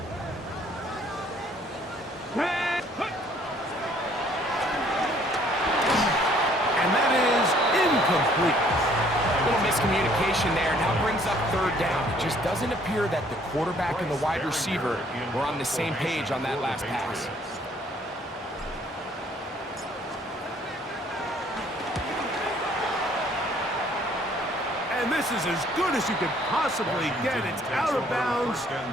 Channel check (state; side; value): normal; both; correlation 0.61